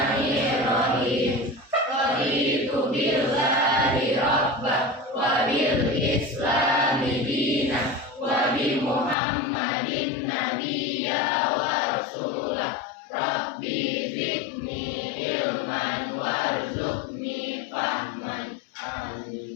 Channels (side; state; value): right; drops out; at 9.2 s